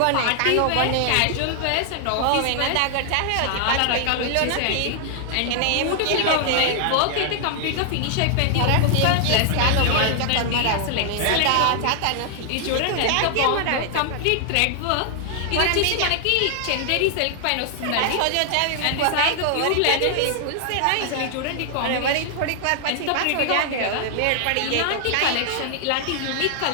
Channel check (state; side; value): different; both; correlation 0.00